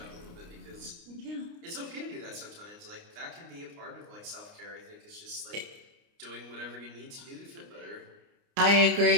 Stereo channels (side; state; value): left; late; 29 ms